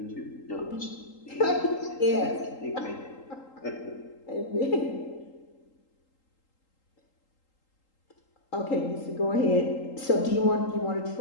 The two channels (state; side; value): late; right; 3.8 ms